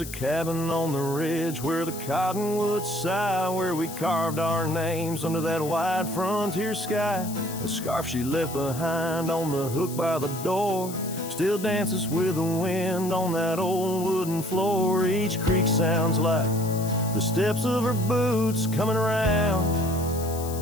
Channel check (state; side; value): noise; left; hiss, 12 dB below the sound